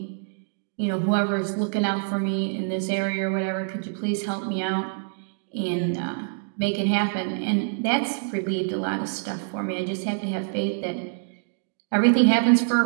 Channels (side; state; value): left; silent; digital silence